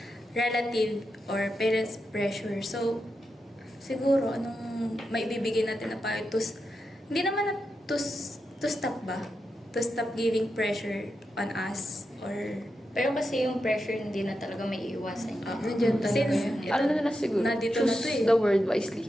relative or parents pressure. So siguro anong maibibigay natin na payo hindi naman na to stop ba? To stop giving pressure on us or Pero kasi yung pressure hindi na talaga may iiwasan. Nandiyan talaga since yun. ito, Ano na siguro? nandito na Choose to eh. the word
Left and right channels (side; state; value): both; normal; correlation 0.87